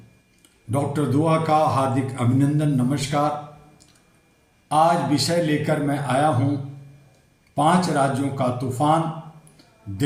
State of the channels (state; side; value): identical; both; correlation 1.00